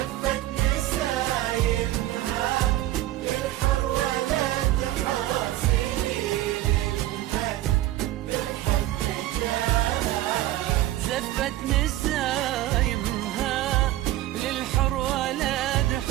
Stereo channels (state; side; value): quieter; left; 15.1 dB